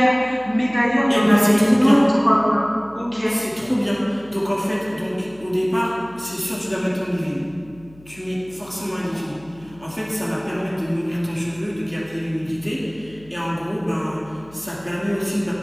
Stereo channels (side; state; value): left; noise; hum, 24 dB below the sound